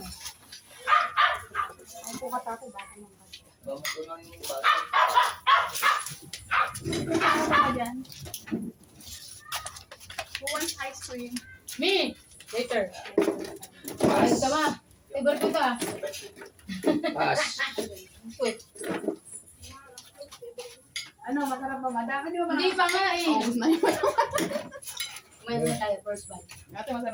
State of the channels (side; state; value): both; identical; correlation 1.00